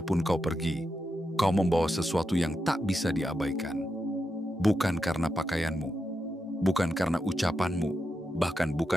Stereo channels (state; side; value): normal; both; correlation 0.86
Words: kau pergi, kau membawa sesuatu yang tak bisa diabaikan. Bukan karena pakaianmu, bukan karena ucapanmu, bahkan